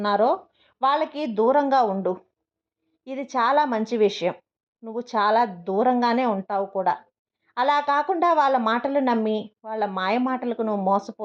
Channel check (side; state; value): both; identical; correlation 1.00